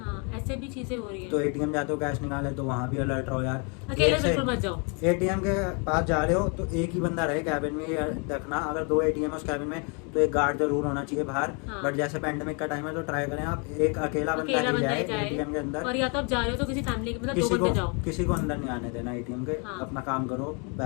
हाँ, ऐसे भी चीजें हो रही तो है। ATM जाते हो कैश निकाले तो वहाँ भी अलर्ट रहो यार। अकेले एक से- बिल्कुल मत जाओ। ATM के पास जा रहे हो तो एक ही बंदा रहे कैबिन में, ये देखना। अगर 2 ATM है उस कैबिन में तो एक गार्ड जरूर होना चाहिए बाहर। हाँ। बट जैसे पेंडेमिक का टाइम है तो ट्राई करें आप एक अकेला बंदा अकेला ही बंदा जाए ही जाए, ATM के अंदर। और या तो आप जा रहे हो तो किसी फैमिली के, मतलब 2 बंदे जाओ, किसी को अंदर नहीं आने देना ATM के। हाँ। अपना काम करो,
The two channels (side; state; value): right; quieter; 35.1 dB